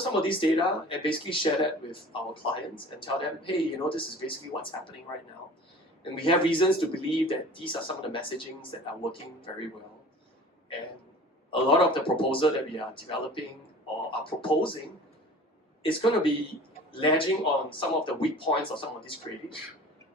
some of these data and basically share that with our clients and tell them, hey, this is basically what's happening right now. And we have reasons to believe that these are some of the messagings that are working very well. And a lot of the proposal that we are developing or are proposing is going to be ledging on some of the weak points of some of these creatives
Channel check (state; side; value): normal; both; correlation 0.43